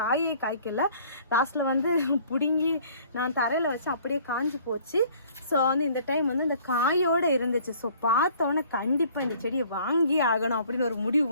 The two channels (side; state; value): both; inverted; correlation -0.55